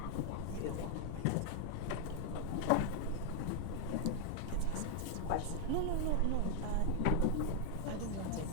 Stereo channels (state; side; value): different; both; correlation 0.01